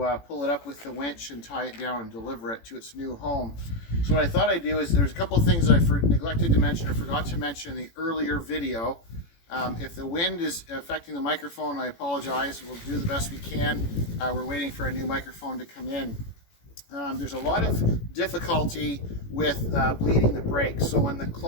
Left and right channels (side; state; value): right; late; 18 ms